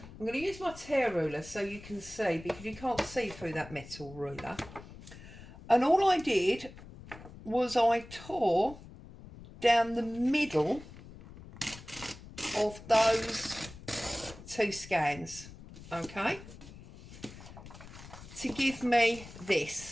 I'm going to use my tear ruler so you can see, because you can't see through that metal ruler. And all I did was I tore down the middle of those 2 scans, okay, to give me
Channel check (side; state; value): left; noise; rumble, 16 dB below the sound